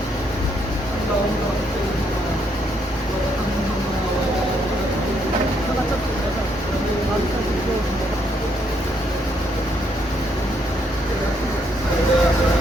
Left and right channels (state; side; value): normal; both; correlation 0.73